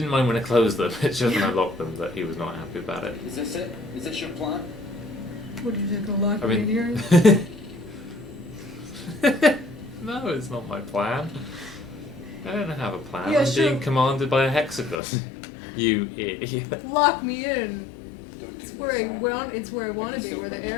mind when I closed them, it's just when I locked them that he was not happy about it. Is this it? Is this your plan? Would you take a lock I mean... No, it's not my plan. I don't have a plan. Yeah, I'm sure. being commanded by a hexagon. You idiot. Lock me in. Don't do It's where I this, Sam. want. It's where I want to be, where the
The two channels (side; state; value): right; drops out; at 15.0 s